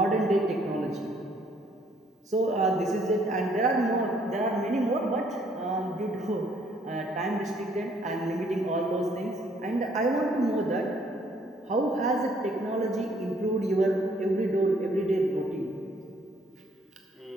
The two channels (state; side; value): normal; both; correlation 0.65